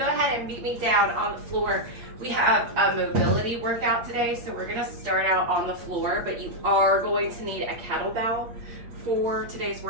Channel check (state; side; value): late; left; 8.6 ms